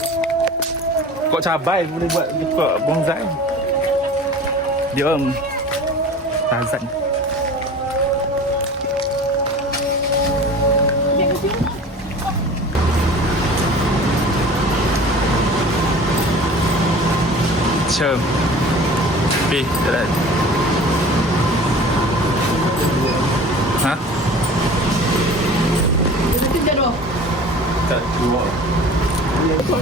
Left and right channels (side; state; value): both; normal; correlation 0.41